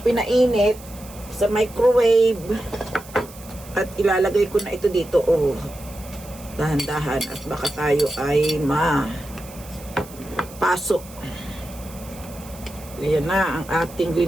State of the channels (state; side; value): noise; right; hiss, 19 dB below the sound